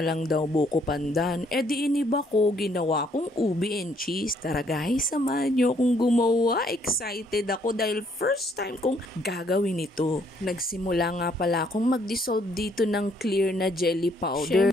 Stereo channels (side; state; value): both; normal; correlation 0.67